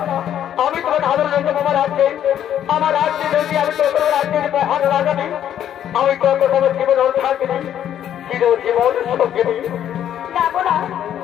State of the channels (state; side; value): quieter; right; 10.4 dB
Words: আমি তোমার আদর রয়েছে আমার রাজ্যে যদি আমি তো কোনো রাজ্যের মহান রাজা নেই আমি তো তোমার জীবন থাকি চিরজীবন সঙ্গে নেই না